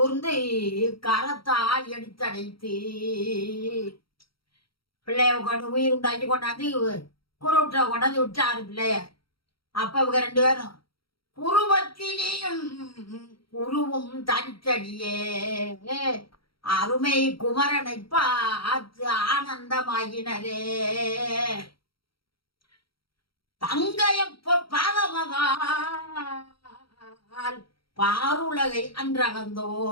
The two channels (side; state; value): right; late; 0.74 ms